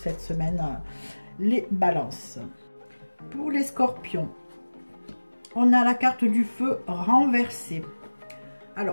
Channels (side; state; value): both; inverted; correlation -1.00